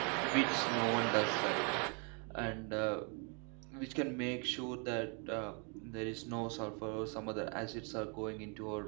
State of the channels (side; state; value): left; quieter; 36.5 dB